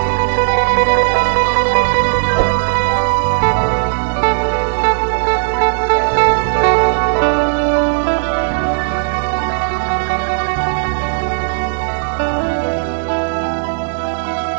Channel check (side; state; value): left; silent; digital silence